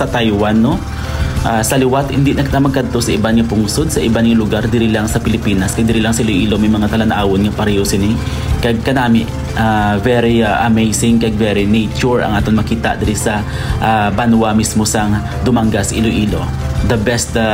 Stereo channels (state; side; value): identical; both; correlation 1.00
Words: Taiwan, no? Sa liwat, hindi na kita magkadto sa iba nga pungsod, sa iba nga lugar, diri lang sa Pilipinas, kay diri lang sa Iloilo, may mga talanaawon nga pareho sini. Kag kanami, very amazing, kag very nature ang aton makita diri sa Banwa mismo sang Dumangas, Iloilo. The best